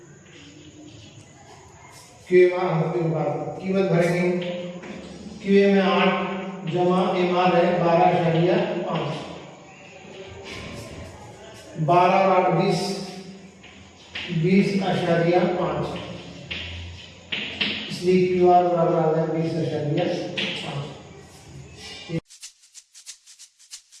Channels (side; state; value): both; identical; correlation 1.00